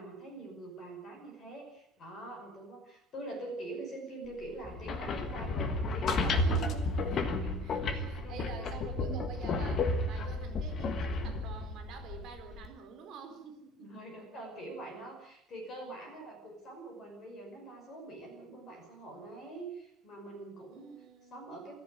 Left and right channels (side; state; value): both; normal; correlation 0.46